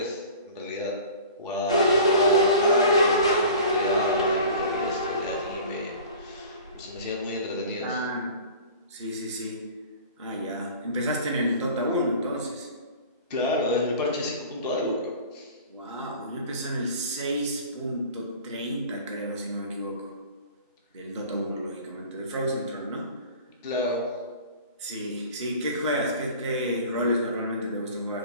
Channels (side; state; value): both; inverted; correlation -0.41